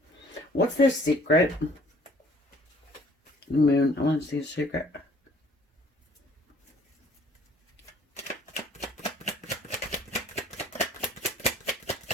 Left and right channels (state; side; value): normal; both; correlation 0.56